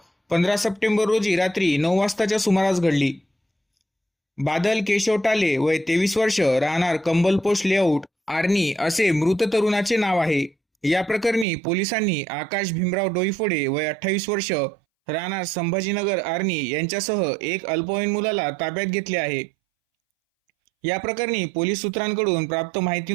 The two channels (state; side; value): drops out; left; at 11.5 s